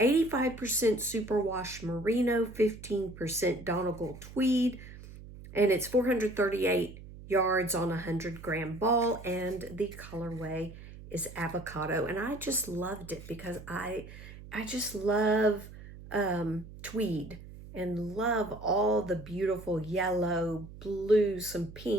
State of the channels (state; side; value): noise; right; hum, 15 dB below the sound